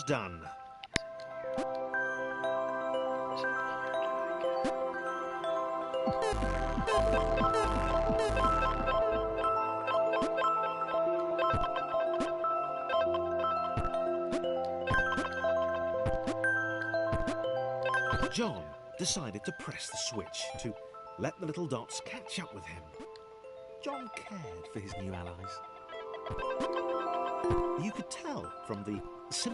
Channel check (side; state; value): both; identical; correlation 1.00